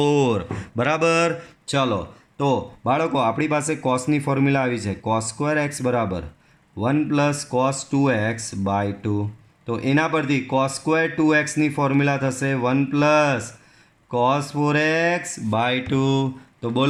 બરાબર. ચલો તો બાળકો આપણી પાસે કોસની ફોર્મ્યુલા આવી છે. કોસ સ્ક્વેર એક્સ બરાબર 1 પ્લસ કોસ 2x/2. તો એના પરથી કોસ સ્ક્વેર 2x ની ફોર્મ્યુલા થશે 1 પ્લસ કોસ 4x/2. તો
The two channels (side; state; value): both; identical; correlation 1.00